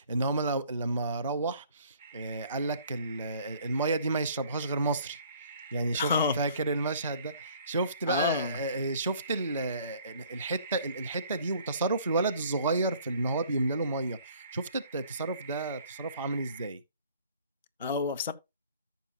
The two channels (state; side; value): inverted; both; correlation -0.56